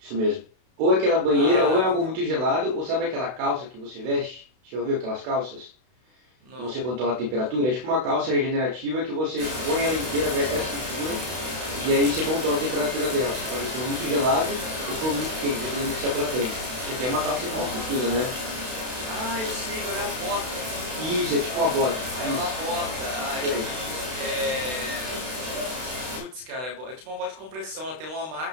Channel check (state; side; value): late; left; 32 ms